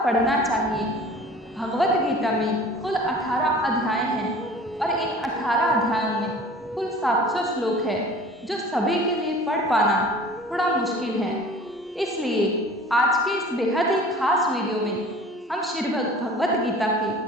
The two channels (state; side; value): normal; both; correlation 0.44